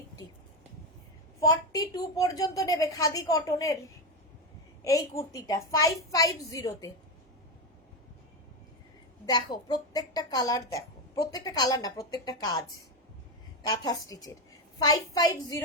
42 পর্যন্ত নেবে খাদি কটনের এই কুর্তিটা 550-তে। দেখো প্রত্যেকটা কালার, দেখো প্রত্যেকটা কালার না, প্রত্যেকটা কাজ কাঁথা স্টিচের।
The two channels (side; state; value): both; normal; correlation 0.12